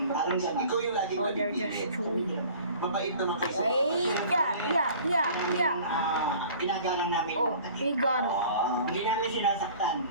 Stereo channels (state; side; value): inverted; both; correlation -0.47